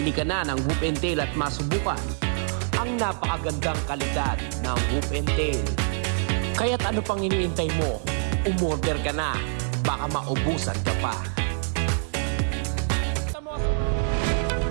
ka na ng Whoop and Tail at masubukan ang napakagandang kalidad ng Whoop and Tail. Kaya't ano pang iniintay mo? Umorder ka na. Baka maubusan ka pa.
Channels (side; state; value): left; silent; 61 dB below the other